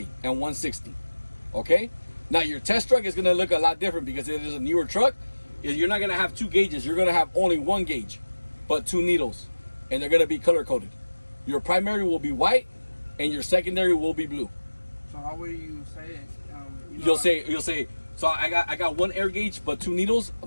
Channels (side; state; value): both; inverted; correlation -1.00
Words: and 160. Okay? Now your test truck is gonna look a lot different because it is a newer truck. You're not gonna have 2 gauges, you're gonna have only 1 gauge, but 2 needles, and they're gonna be color coded. Your primary will be white, and your secondary will be blue. So how will you say it? You'll say. So I got 1 air gauge, but 2 needles,